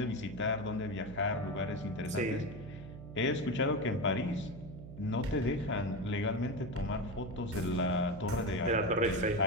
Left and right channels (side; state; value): right; noise; hum, 13 dB below the sound